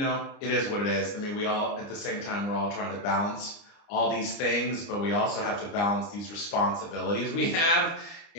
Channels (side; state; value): right; late; 29 ms